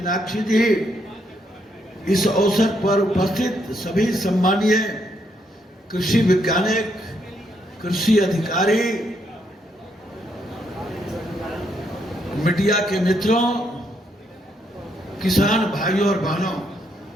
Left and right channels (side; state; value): both; normal; correlation 0.75